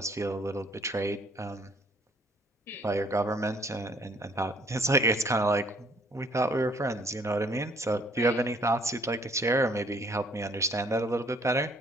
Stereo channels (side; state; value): both; normal; correlation 0.62